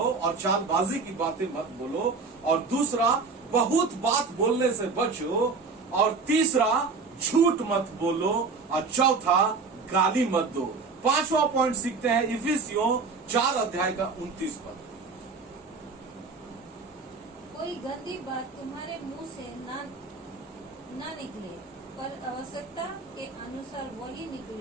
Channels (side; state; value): left; quieter; 4.5 dB